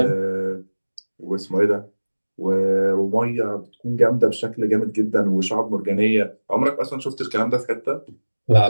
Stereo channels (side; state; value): both; inverted; correlation -1.00